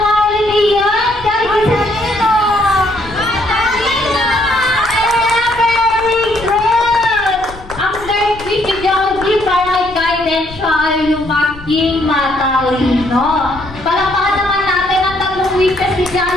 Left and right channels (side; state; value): left; noise; rumble, 17 dB below the sound